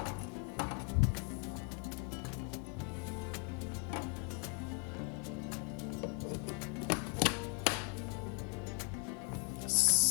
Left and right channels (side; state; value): right; quieter; 37.1 dB